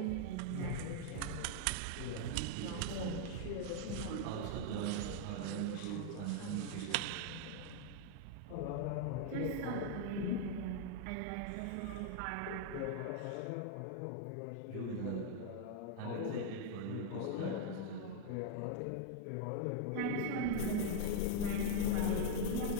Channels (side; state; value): both; different; correlation -0.01